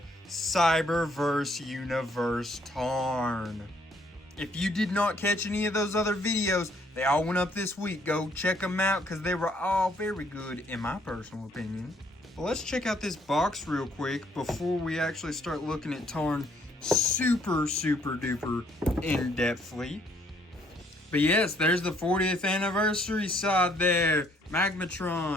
Cyberverse Universe Tarn. If you did not catch any of those other videos, they all went up this week. Go check them out because they were all very good in my personal opinion. Well, let's check out this box real quick before we actually start looking at Tarn super duper in-depthly. But yes, there's the 40th anniversary side there.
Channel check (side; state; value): both; normal; correlation 0.66